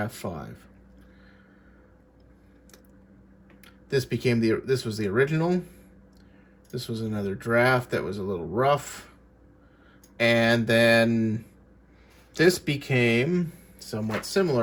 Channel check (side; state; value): both; identical; correlation 1.00